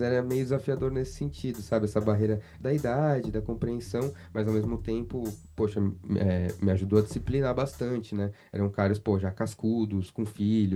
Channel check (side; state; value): both; identical; correlation 1.00